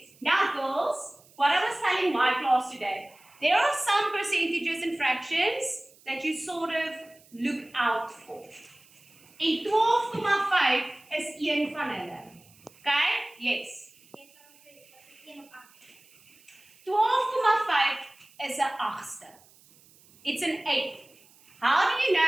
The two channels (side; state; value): right; noise; hiss, 27 dB below the sound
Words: Now girls, what I was telling my class today, there are some percentages and fractions that you sort of look out for. En 12,5 is een van hulle. Okay? Yes. 12,5 is 'n agste. It's an eighth. How do you